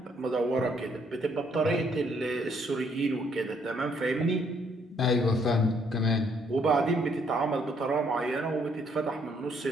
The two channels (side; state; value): both; normal; correlation 0.68